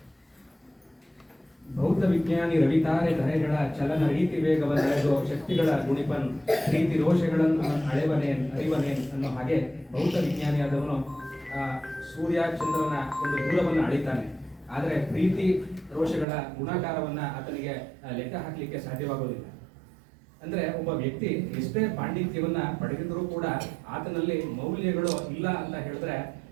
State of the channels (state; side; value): drops out; left; at 16.2 s